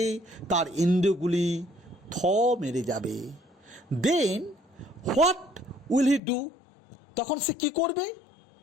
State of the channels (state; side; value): drops out; right; at 6.2 s